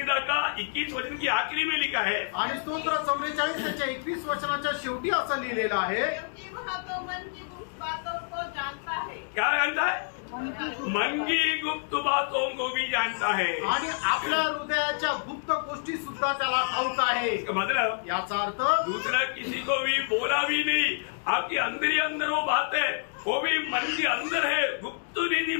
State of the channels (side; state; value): right; silent; digital silence